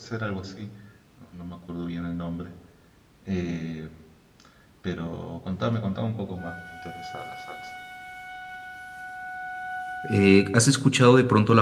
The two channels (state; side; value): identical; both; correlation 1.00